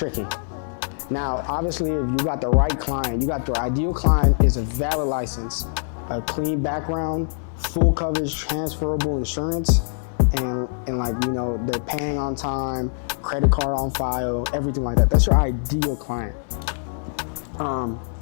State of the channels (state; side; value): silent; right; 60 dB below the other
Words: Now, obviously, if you got the right client, you got the ideal client is a valid license, a clean background, full coverage, transferable insurance, and like, you know, they're paying on time, credit card on file, everything like that. That's your ideal client.